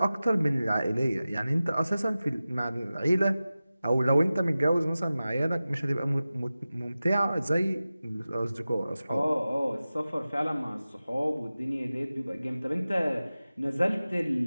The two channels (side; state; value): both; inverted; correlation -0.95